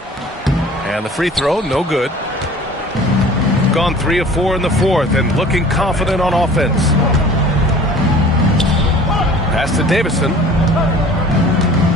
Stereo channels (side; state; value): both; normal; correlation 0.47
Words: And the free throw, no good. Gone 3 of 4 in the fourth and looking confident on offense. Pass to Davison.